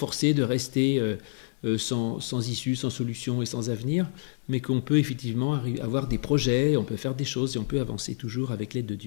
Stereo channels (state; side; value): silent; right; digital silence